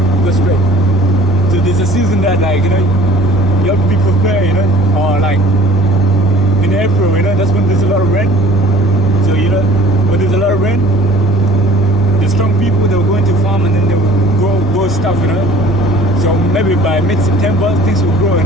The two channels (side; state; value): both; normal; correlation 0.50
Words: Go straight. So there's a season that, like, you know, you have to be prepared, you know, or like in April, you know, that's when there's a lot of rain. So, you know, when there's a lot of rain, the strong people, they'll go into farm and then they'll grow stuff, you know. So maybe by mid-September, things will grow, you